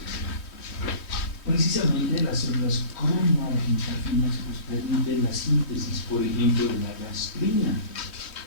Precisamente las células cromoargentafinas pues permiten la síntesis, por ejemplo, de la gastrina.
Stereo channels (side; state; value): right; late; 3.1 ms